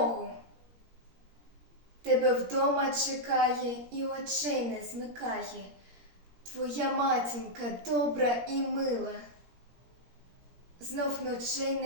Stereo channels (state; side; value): late; left; 17 ms